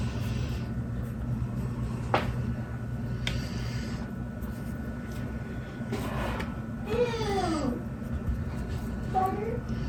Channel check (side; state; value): both; identical; correlation 1.00